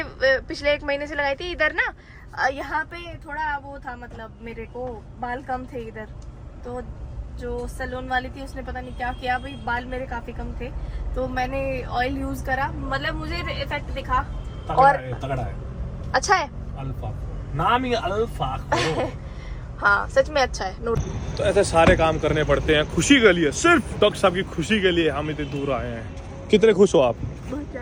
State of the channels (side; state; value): both; identical; correlation 1.00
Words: पिछले 1 महीने से लगाई थी इधर ना, यहाँ पे थोड़ा वो था, मतलब मेरे को बाल कम थे इधर, तो जो सैलून वाली थी उसने पता नहीं क्या किया भाई, बाल मेरे काफी कम थे, तो मैंने ऑयल यूज करा, मतलब मुझे इफेक्ट दिखा। और तगड़ा है, अच्छा है, अल्फा नाम ही अल्फा हाँ सच में अच्छा है। नोट तो ऐसे सारे काम करने पड़ते हैं खुशी के लिए, सिर्फ डॉक्टर साहब की खुशी के लिए हम इतने दूर आए हैं। कितने खुश हो आप? बहुत